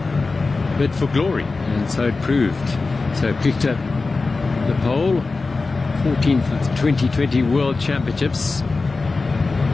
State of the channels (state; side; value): quieter; right; 3.8 dB